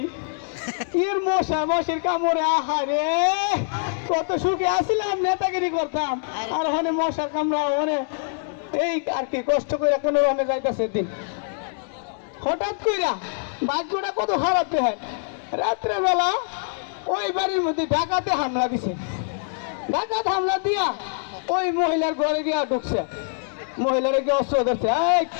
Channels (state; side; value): silent; right; digital silence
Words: এর মশার কামড়ে আহারে কত সুখে আসিলাম, নেতাগিরি করতাম, আর ওখানে মশার কামড়া ওখানে এই আর কি কষ্ট করে কোনো রকমে যাইতেছে দিন। হঠাৎ কইরা ভাগ্যটা কত খারাপ হয়, রাত্রে বেলা ওই বাড়ির মধ্যে ডাকাতে হামলা দিছে। ডাকাত হামলা দিয়া ওই মহিলার ঘরে গিয়া ঢুকছে, মহিলারে গিয়ে অস্ত্র ধরছে, এই